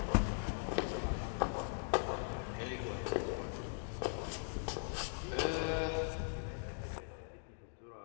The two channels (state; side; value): silent; right; digital silence